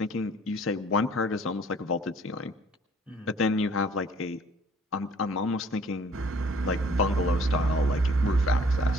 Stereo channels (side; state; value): both; normal; correlation 0.57